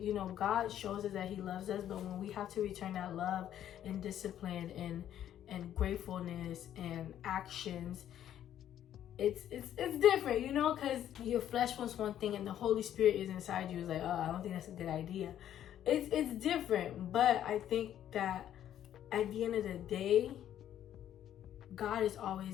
God shows us that he loves us, but when we have to return that love and discipline and gratefulness and actions, it's different, because your flesh wants one thing and the Holy Spirit is inside you. It's like, oh, I don't think that's a good idea. It's different, but I think that at the end of the day, God is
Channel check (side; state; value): right; quieter; 11.0 dB